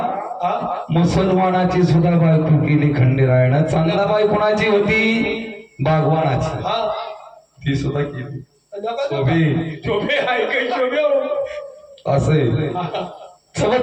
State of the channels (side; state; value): both; identical; correlation 1.00